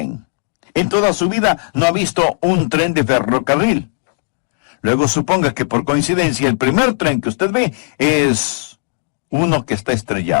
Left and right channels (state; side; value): silent; right; digital silence